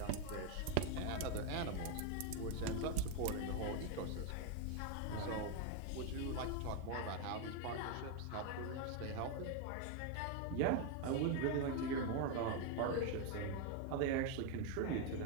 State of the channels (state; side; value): different; both; correlation 0.01